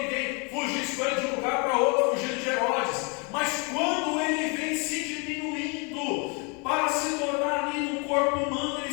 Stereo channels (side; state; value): right; quieter; 33.1 dB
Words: fugisse com ele de um lugar para outro, fugindo de Herodes. Mas quando ele vem se diminuindo para se tornar ali no corpo humano,